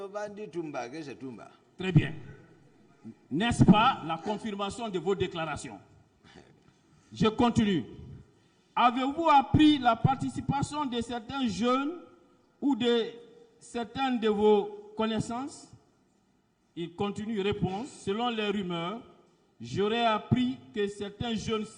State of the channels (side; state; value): both; identical; correlation 1.00